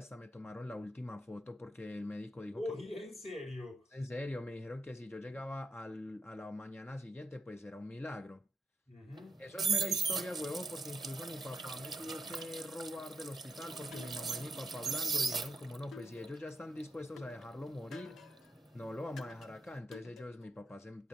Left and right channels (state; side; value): normal; both; correlation 0.81